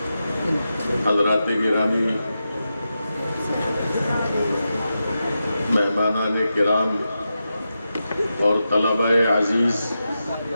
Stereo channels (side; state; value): both; inverted; correlation -0.89